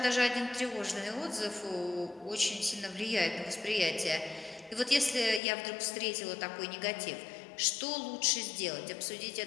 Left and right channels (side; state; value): right; drops out; at 5.4 s